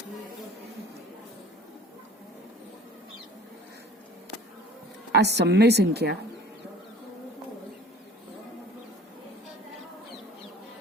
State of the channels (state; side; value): normal; both; correlation 0.47